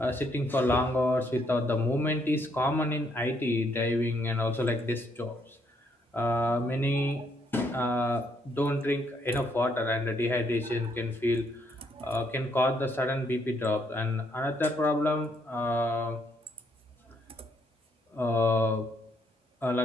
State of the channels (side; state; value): both; normal; correlation 0.72